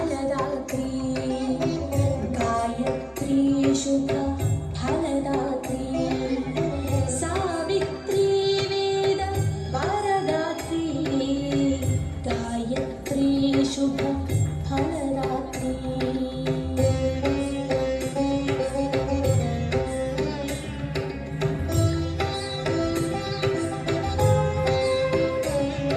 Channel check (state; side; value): identical; both; correlation 1.00